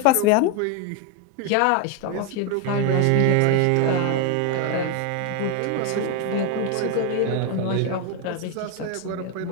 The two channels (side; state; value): both; different; correlation 0.01